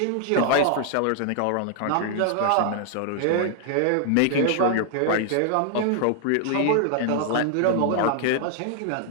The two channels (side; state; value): both; different; correlation 0.00